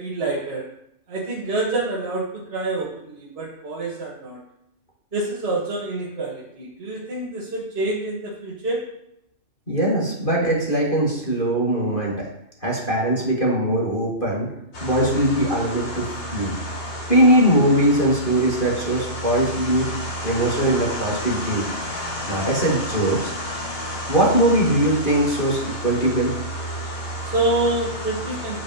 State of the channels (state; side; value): late; right; 2.4 ms